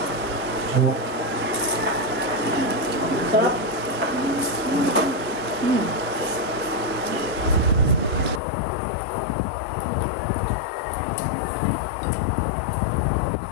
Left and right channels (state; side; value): drops out; right; at 8.4 s